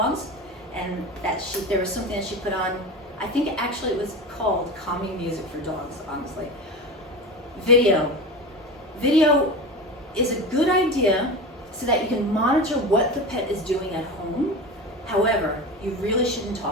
And there was something that she put on. I think actually it was called calming music for dogs, honestly. Video. Video is a good idea so that you can monitor what the pet is doing at home. However, you really shouldn't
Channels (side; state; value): both; normal; correlation 0.27